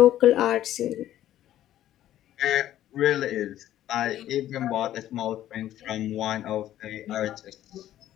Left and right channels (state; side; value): quieter; right; 12.7 dB